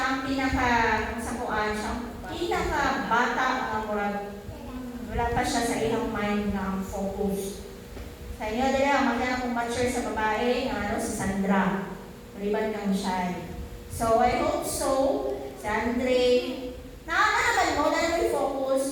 ang pinaka-sakuan, siya ang pinaka-bata ang murag. Wala pa siya sa ilang mind na ang focus. Sa inyo, dila, magkana kong mature sa babae, si Sandra. Maliban kang shy. So, I hope so. Si Andre, naman mo, na naman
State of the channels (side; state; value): both; identical; correlation 1.00